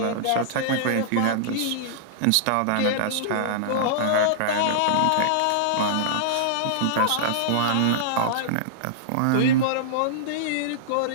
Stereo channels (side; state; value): both; different; correlation -0.02